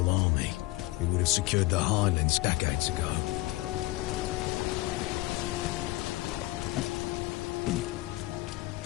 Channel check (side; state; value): right; quieter; 20.1 dB